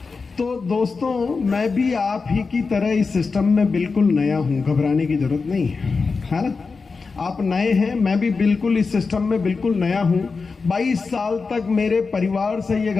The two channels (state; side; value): quieter; right; 4.5 dB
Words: तो दोस्तों मैं भी आप ही की तरह इस सिस्टम में बिल्कुल नया हूं, घबराने की जरूरत नहीं है ना। आप नए हैं, मैं भी बिल्कुल इस सिस्टम में बिल्कुल नया हूं। 22 साल तक मेरे परिवार से ये